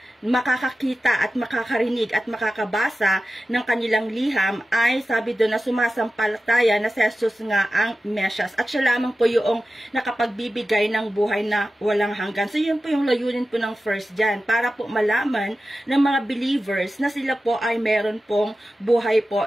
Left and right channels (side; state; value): both; normal; correlation 0.94